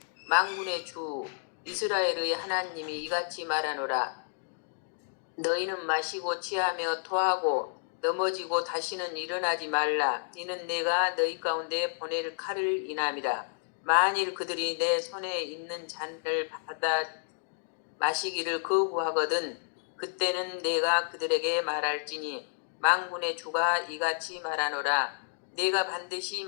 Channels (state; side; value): silent; right; digital silence